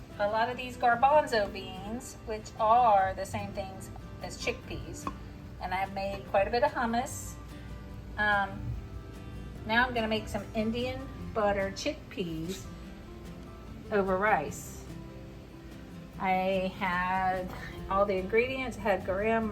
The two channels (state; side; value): identical; both; correlation 1.00